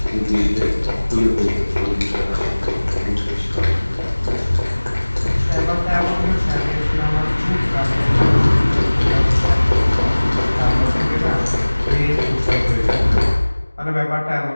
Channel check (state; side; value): inverted; both; correlation -1.00